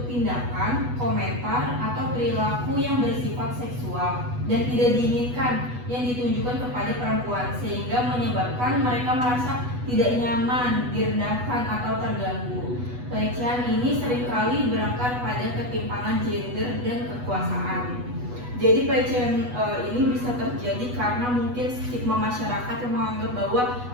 tindakan, komentar, atau perilaku yang bersifat seksual dan tidak diinginkan yang ditunjukkan kepada perempuan sehingga menyebabkan mereka merasa tidak nyaman, direndahkan, atau terganggu. Pelecehan ini seringkali berakar pada ketimpangan gender dan kekuasaan. Jadi pelecehan ini bisa terjadi karena mungkin stigma masyarakat yang menganggap bahwa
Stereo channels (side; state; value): left; late; 8.1 ms